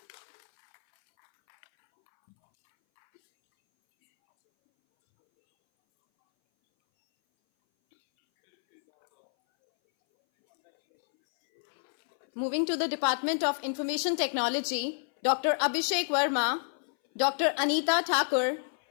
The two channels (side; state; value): right; silent; 59 dB below the other